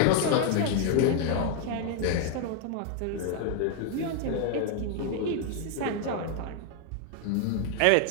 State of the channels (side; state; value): both; different; correlation 0.00